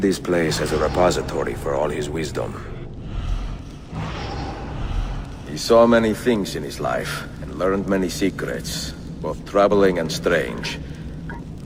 this place as a repository for all his wisdom. He saw many things in his life, and learned many secrets, both troubling and strange.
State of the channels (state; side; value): identical; both; correlation 1.00